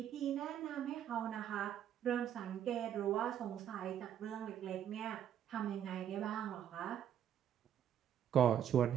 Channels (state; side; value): quieter; left; 9.8 dB